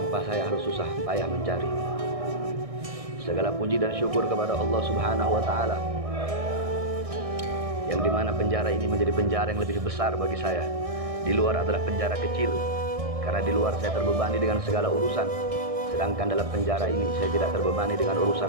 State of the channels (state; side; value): late; left; 1.6 ms